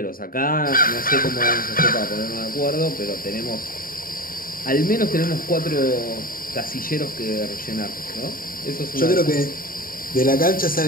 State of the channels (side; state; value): right; late; 0.41 ms